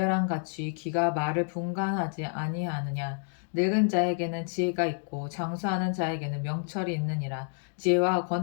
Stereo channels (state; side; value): silent; right; 58 dB below the other